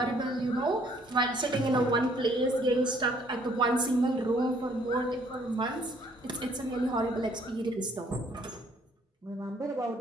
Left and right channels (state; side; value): normal; both; correlation 0.62